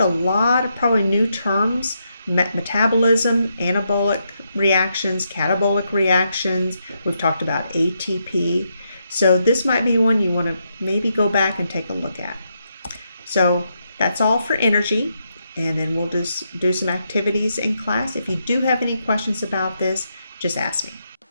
lot of probably new terms: metabolism, anabolic reactions, catabolic reactions. We've talked about ATP. So this might be one you want to maybe go back and take a look at. So that's all for energy. And then we'll just do some activities in class. If you do have any questions about this, just ask me.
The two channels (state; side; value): inverted; both; correlation -0.80